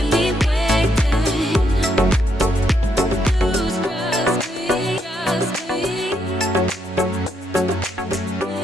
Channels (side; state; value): both; normal; correlation 0.76